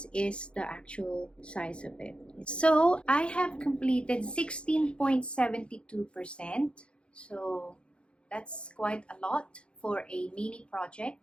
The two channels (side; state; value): right; late; 0.057 ms